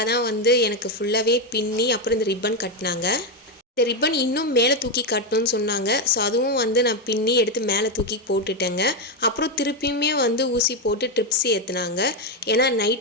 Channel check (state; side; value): normal; both; correlation 0.07